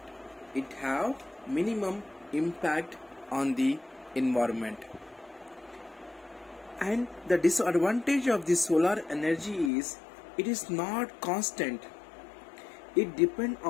And the disadvantage of the solar energy is it is not constant. It depends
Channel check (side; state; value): right; drops out; at 9.7 s